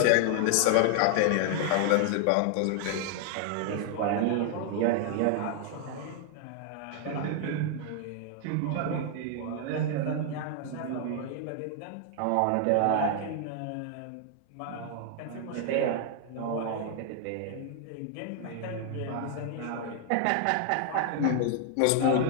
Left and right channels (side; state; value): both; different; correlation 0.00